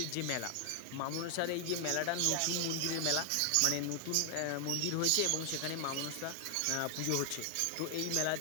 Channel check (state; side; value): different; both; correlation 0.00